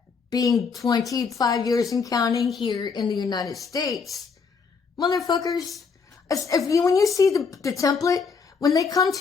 being 25 years and counting here in the United States, motherfuckers, when you see the template, when they come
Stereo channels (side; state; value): right; quieter; 5.4 dB